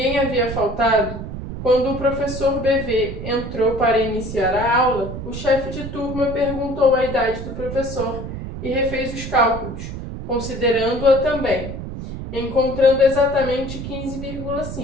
havia faltado, quando o professor BV entrou para iniciar a aula, o chefe de turma perguntou a idade do professor e refez os cálculos, considerando-a também, encontrando exatamente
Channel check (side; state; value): right; noise; rumble, 8 dB below the sound